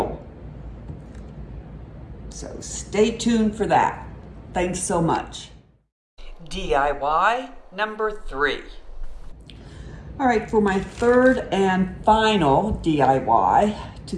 So stay tuned for that. Thanks so much. DIY number 3. All right, for my 3rd and final DIY to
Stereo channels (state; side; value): identical; both; correlation 1.00